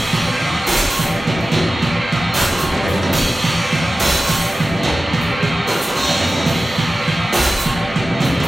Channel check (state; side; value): normal; both; correlation 0.95